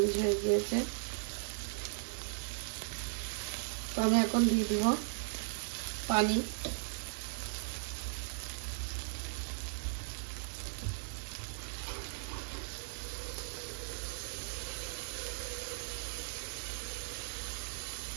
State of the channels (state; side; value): silent; left; digital silence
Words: হয়ে গিয়েছে। তো আমি এখন দিয়ে দিব পানি।